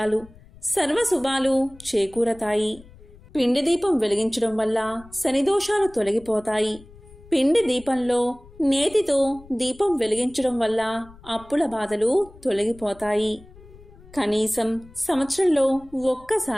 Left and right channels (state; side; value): noise; left; rumble, 22 dB below the sound